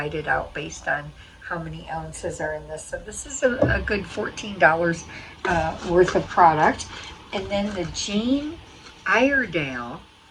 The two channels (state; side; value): identical; both; correlation 1.00